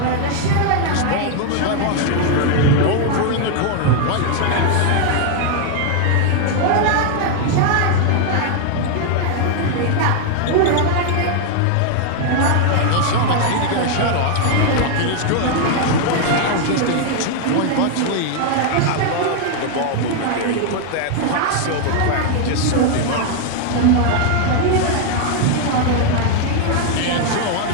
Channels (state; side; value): different; both; correlation 0.00